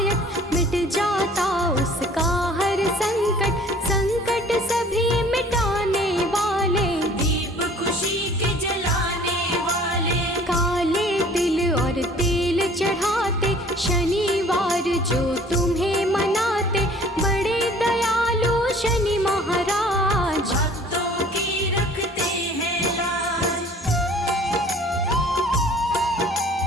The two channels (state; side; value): normal; both; correlation 0.51